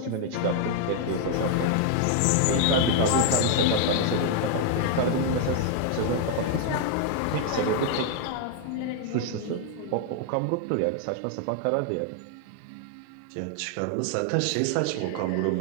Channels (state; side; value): different; both; correlation 0.00